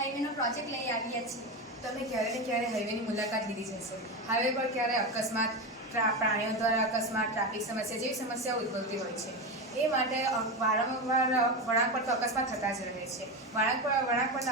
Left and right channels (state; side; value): normal; both; correlation 0.18